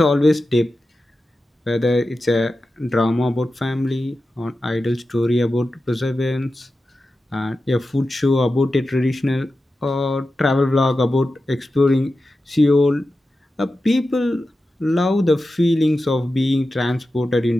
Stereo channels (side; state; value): both; normal; correlation 0.92